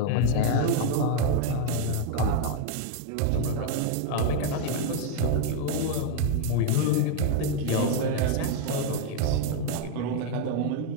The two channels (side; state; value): both; different; correlation 0.01